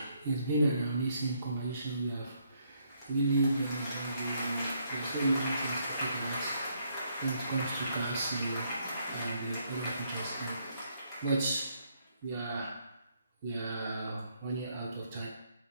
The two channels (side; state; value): both; inverted; correlation -0.72